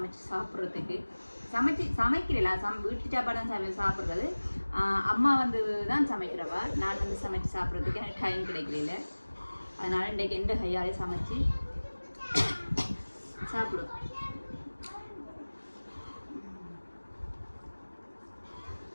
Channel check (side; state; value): both; inverted; correlation -1.00